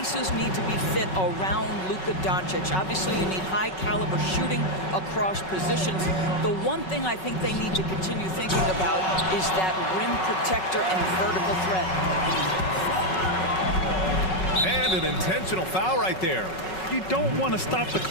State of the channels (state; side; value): late; right; 5.4 ms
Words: need to be fit around Luka Doncic. Obviously, you need high-caliber shooting across positions. The one thing I think they need to continue thinking about is that rim protector and vertical threat. And an intentional foul right there. You don't want to stop the